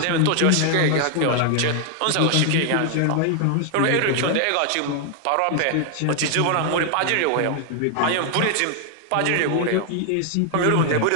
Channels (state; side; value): different; both; correlation 0.00